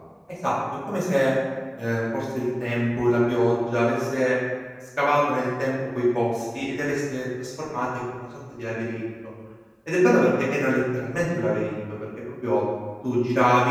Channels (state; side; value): identical; both; correlation 1.00